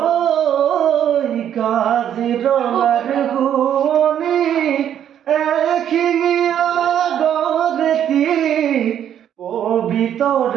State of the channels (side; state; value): left; quieter; 9.9 dB